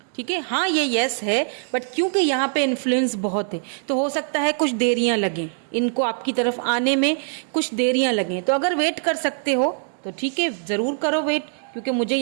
ठीक है, हाँ ये यस है, बट क्योंकि यहाँ पे इन्फ्लुएंस बहुत है तो हो सकता है कुछ देरियां लगें इनको आपकी तरफ आने में, कुछ देरियां लगें। तो अगर वेट कर सकते हो तो ठीक है, जरूर करो वेट, क्योंकि मुझे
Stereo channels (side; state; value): left; silent; digital silence